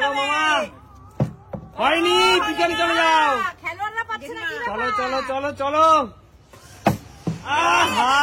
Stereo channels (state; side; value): identical; both; correlation 1.00